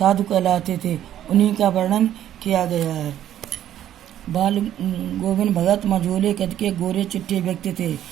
कहलाते थे। उन्हीं का वर्णन किया गया है। बाल गोविंद भगत मझोले कद के गोरे चिट्टे व्यक्ति थे।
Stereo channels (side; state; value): left; quieter; 11.5 dB